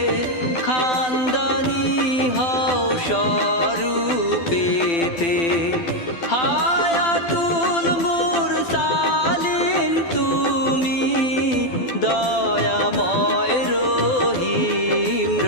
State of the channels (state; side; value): late; right; 12 ms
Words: খানদানি হও স্বরূপেতে হায়াতুল মুরসালিন তুমি দয়াময় রহিম